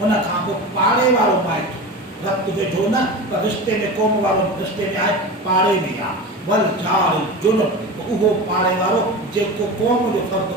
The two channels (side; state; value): both; normal; correlation 0.28